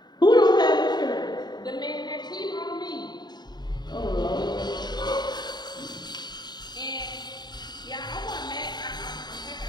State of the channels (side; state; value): right; late; 0.20 ms